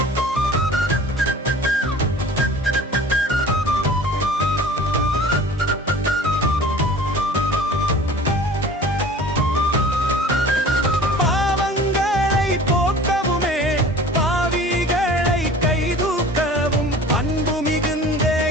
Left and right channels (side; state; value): both; normal; correlation 0.44